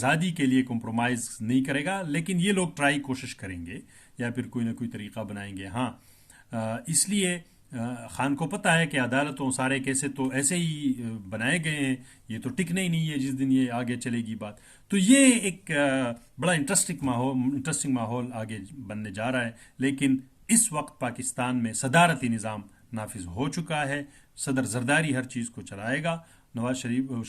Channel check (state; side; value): identical; both; correlation 1.00